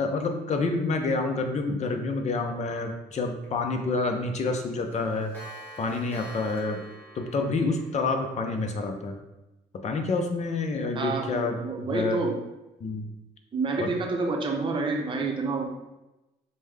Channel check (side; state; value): both; normal; correlation 0.47